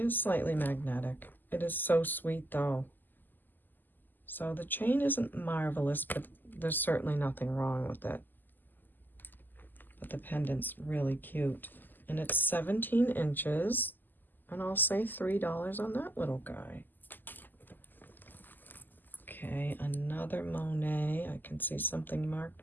slightly magnetic. It is so sweet, though. So the chain isn't marvelous, but there's certainly nothing wrong with it. but the pendant's really cute. And it's 17 inches, and I'll say $3 on that little guy. Okay, another Monet. I can see something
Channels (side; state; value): right; late; 0.088 ms